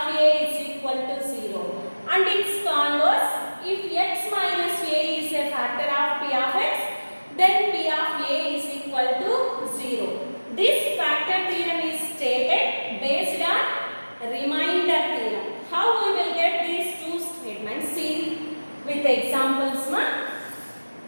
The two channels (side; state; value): both; inverted; correlation -1.00